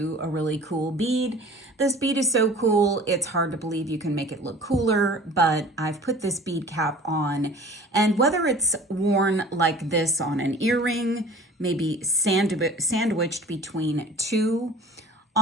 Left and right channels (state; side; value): normal; both; correlation 0.45